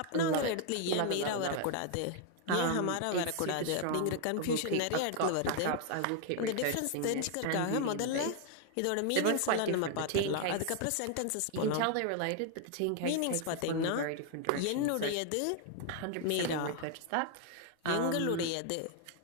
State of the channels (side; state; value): both; different; correlation 0.00